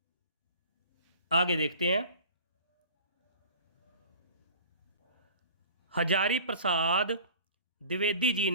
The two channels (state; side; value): inverted; both; correlation -0.43